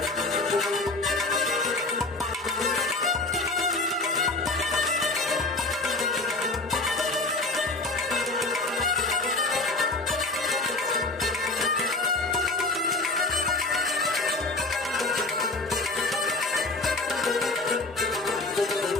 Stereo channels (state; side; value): quieter; right; 3.1 dB